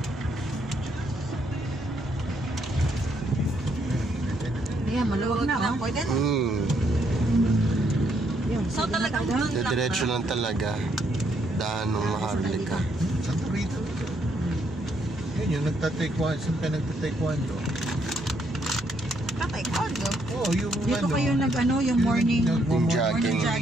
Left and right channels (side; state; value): both; normal; correlation 0.73